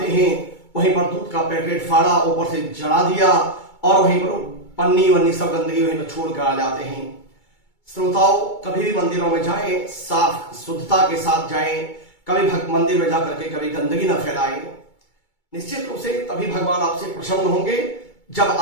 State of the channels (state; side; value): late; right; 2.3 ms